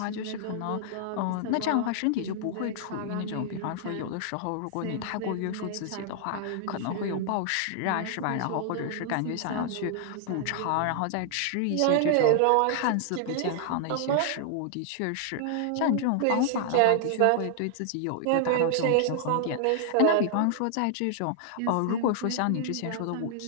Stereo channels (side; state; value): both; different; correlation -0.01